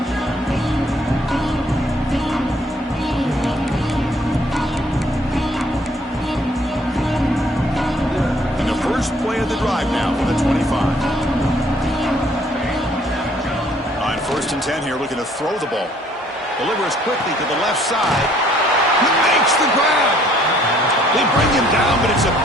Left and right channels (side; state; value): both; normal; correlation 0.62